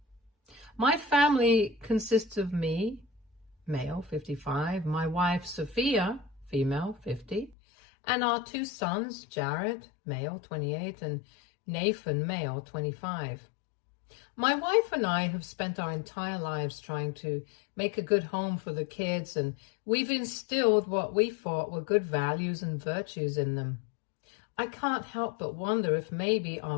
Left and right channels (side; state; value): right; drops out; at 7.6 s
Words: My family consists of me, male, 55, my wife, Sophia, female, 50, and our two sons, Jared, male, 28, and Nathan, male, 25. My wife and I have spent our entire lives trying to make a good home for the kids, and we've instilled what we thought were good values and virtues in them. I can't help but wonder if maybe our